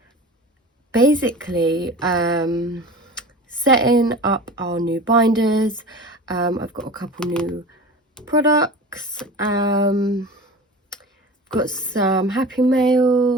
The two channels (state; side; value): normal; both; correlation 0.35